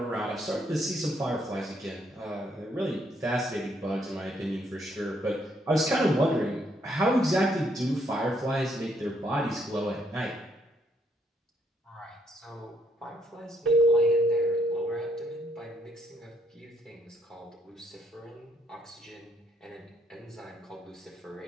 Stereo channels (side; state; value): both; normal; correlation 0.72